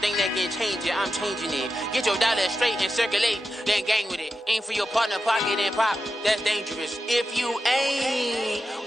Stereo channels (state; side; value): normal; both; correlation 0.90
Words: that can change it. I'm changing it. Get your dollar straight and circulate, then gang with it. Aim for your partner, pocket and pop. That's dangerous. If you ain't